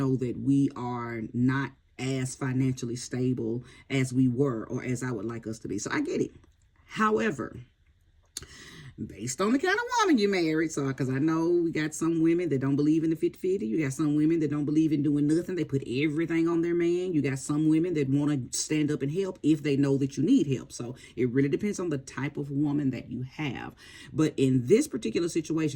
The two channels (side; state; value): both; identical; correlation 1.00